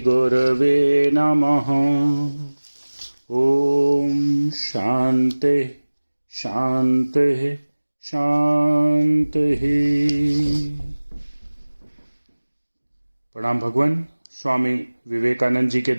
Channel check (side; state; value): both; inverted; correlation -1.00